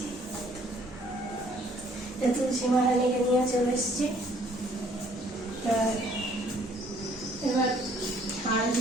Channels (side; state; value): both; normal; correlation 0.61